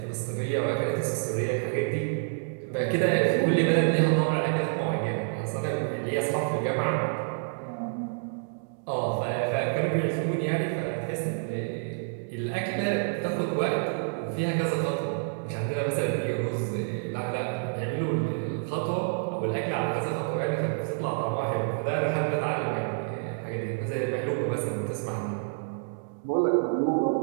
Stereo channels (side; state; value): left; silent; digital silence